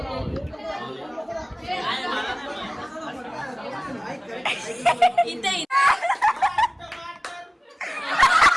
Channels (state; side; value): identical; both; correlation 1.00